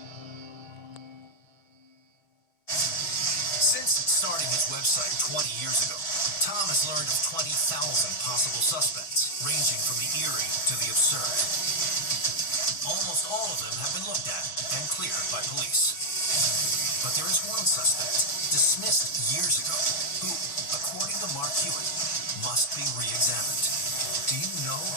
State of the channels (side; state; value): right; late; 6.3 ms